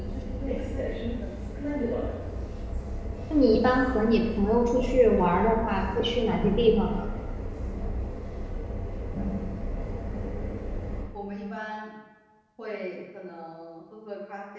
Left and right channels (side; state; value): both; identical; correlation 1.00